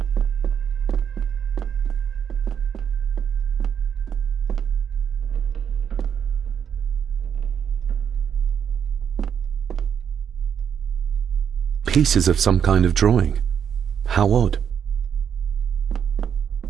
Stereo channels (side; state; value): left; quieter; 8.0 dB